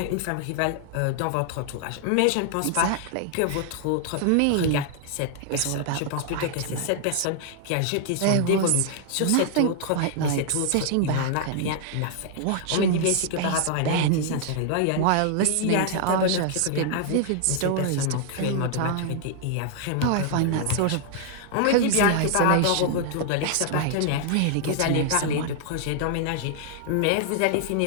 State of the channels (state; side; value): different; both; correlation 0.00